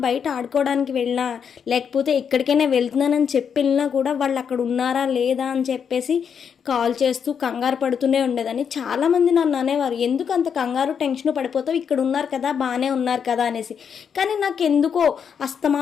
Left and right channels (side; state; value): right; quieter; 7.2 dB